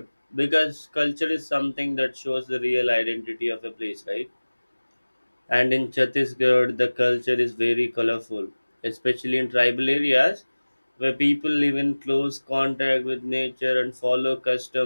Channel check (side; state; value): both; inverted; correlation -1.00